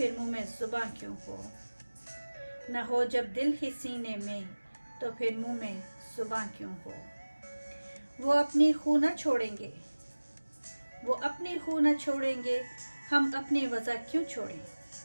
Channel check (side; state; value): both; inverted; correlation -1.00